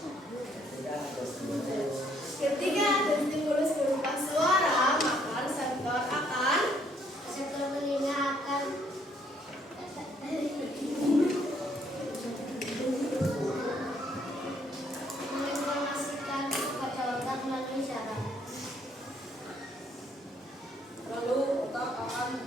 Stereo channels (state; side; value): normal; both; correlation 0.67